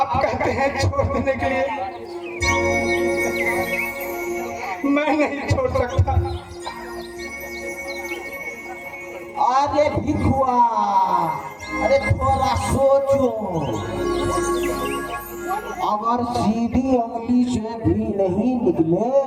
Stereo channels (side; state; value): both; identical; correlation 1.00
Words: कहते हैं छोड़ देने के लिए, मैं नहीं छोड़ सकता। अरे भिखुआ, अरे थोड़ा सोचो, अगर सीधी उंगली से भी नहीं निकले